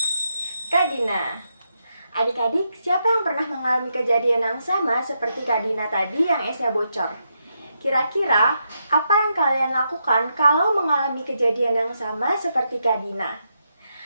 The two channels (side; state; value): both; inverted; correlation -0.82